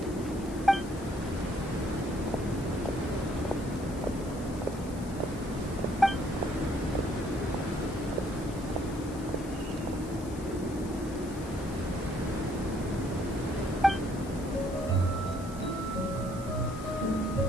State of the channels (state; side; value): noise; left; hiss, 18 dB below the sound